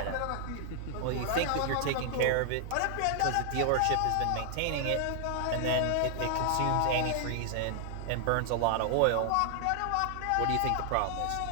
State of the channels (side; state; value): both; different; correlation 0.00